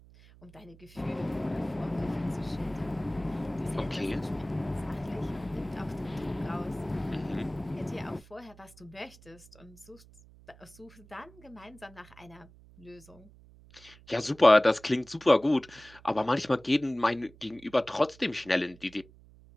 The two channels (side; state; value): right; noise; hum, 23 dB below the sound